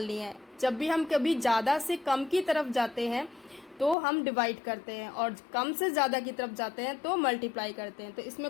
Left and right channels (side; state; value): right; drops out; at 4.0 s